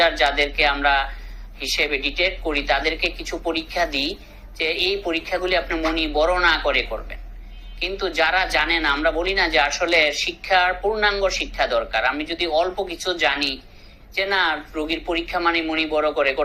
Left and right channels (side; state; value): both; identical; correlation 1.00